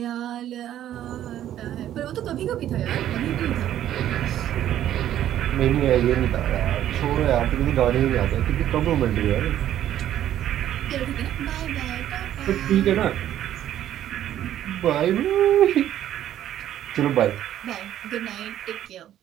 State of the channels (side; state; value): left; quieter; 11.8 dB